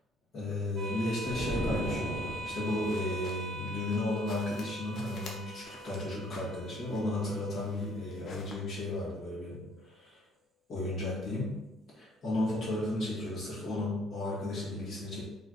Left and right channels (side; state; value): both; normal; correlation 0.60